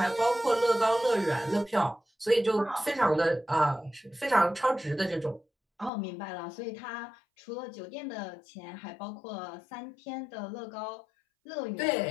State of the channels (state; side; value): drops out; right; at 5.9 s